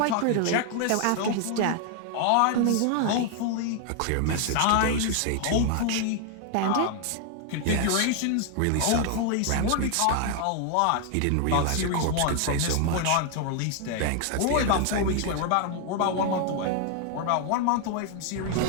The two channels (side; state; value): both; different; correlation 0.00